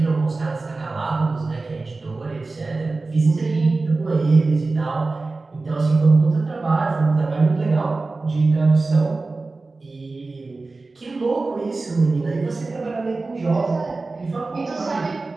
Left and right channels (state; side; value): quieter; left; 3.5 dB